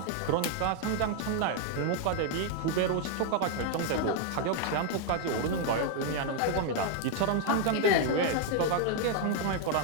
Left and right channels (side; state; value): both; different; correlation 0.00